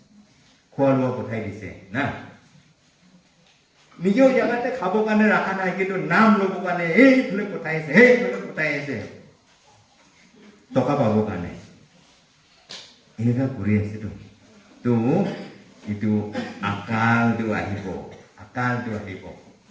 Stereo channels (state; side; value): identical; both; correlation 1.00